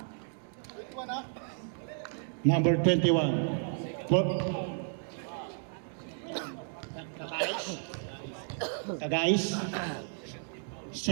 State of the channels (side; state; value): left; silent; 56 dB below the other